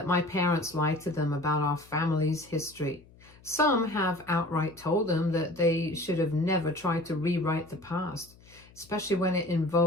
my parents lied to them about our family's history. Some have outright told them that they should have never tried to rewrite the past, especially when it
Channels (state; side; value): noise; left; hum, 25 dB below the sound